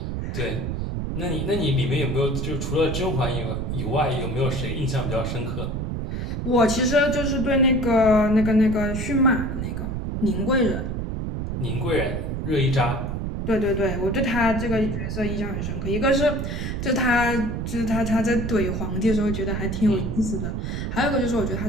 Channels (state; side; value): noise; right; rumble, 3 dB below the sound